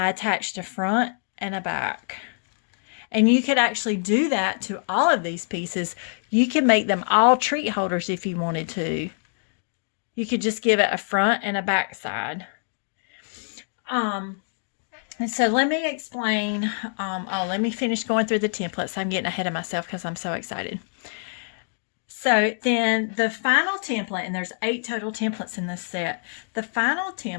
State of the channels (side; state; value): right; silent; digital silence